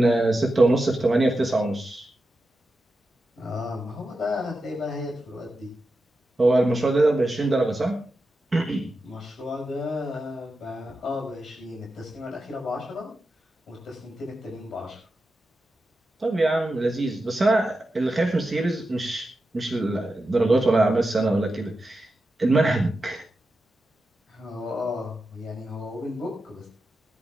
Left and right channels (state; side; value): normal; both; correlation 0.90